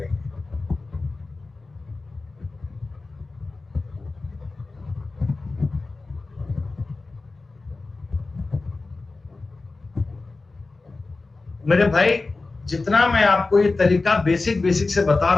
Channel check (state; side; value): quieter; right; 3.5 dB